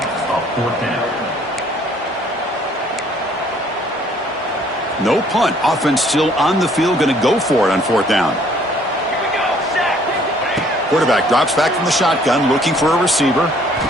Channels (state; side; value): normal; both; correlation 0.60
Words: a 4th down. No punt. Offense still on the field. Going to go for it on 4th down. Quarterback drops back from the shotgun, looking for a receiver.